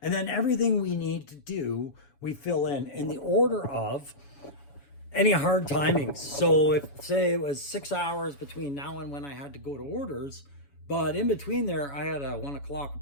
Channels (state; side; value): late; right; 7.1 ms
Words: And then everything we need to do, we fill in the order of any hard timings. So if, say, it was 6 hours between now and when I had to go to orders, but in between there, I had a 1 o'clock